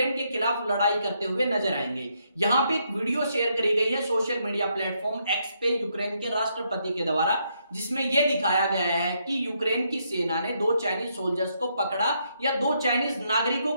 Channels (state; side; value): inverted; both; correlation -0.76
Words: के खिलाफ लड़ाई करते हुए नजर आएंगे। यहां पे एक वीडियो शेयर करी गई है सोशल मीडिया प्लेटफॉर्म एक्स पे यूक्रेन के राष्ट्रपति के द्वारा, जिसमें यह दिखाया गया है कि यूक्रेन की सेना ने दो चाइनीज सोल्जर्स को पकड़ा या दो चाइनीज नागरिकों